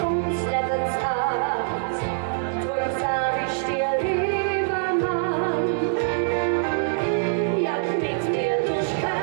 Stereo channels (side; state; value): left; silent; digital silence